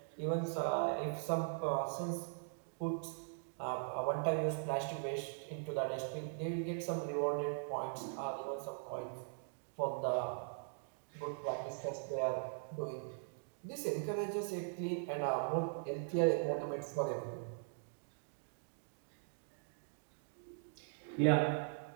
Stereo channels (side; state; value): left; silent; digital silence